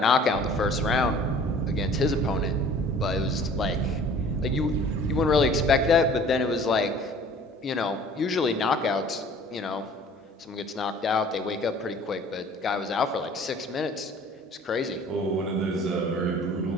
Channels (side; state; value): both; normal; correlation 0.49